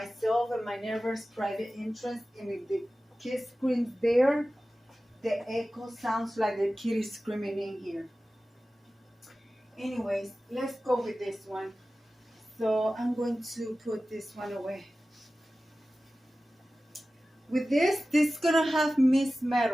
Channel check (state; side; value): normal; both; correlation 0.96